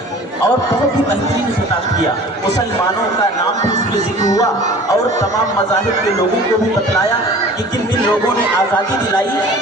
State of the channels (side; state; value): both; normal; correlation 0.44